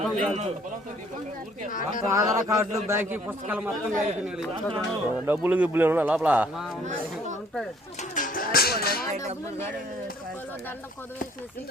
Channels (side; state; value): both; normal; correlation 0.59